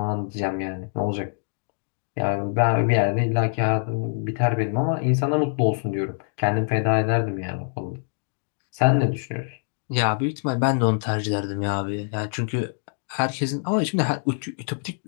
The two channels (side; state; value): right; silent; digital silence